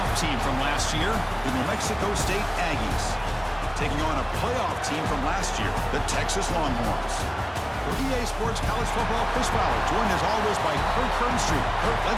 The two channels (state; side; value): identical; both; correlation 1.00